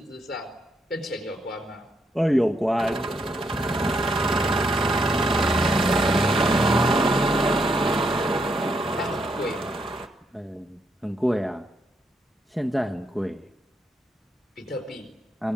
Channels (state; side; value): normal; both; correlation 0.78